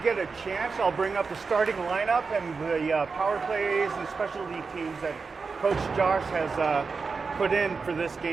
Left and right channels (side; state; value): left; quieter; 4.8 dB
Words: a chance, I'll bring up the starting lineup and the power plays and specialty teams that Coach Josh has put in for this